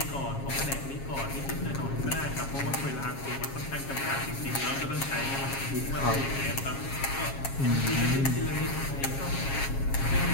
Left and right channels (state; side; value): late; right; 7.3 ms